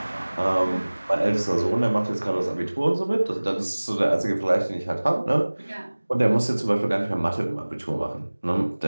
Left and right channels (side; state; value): both; inverted; correlation -1.00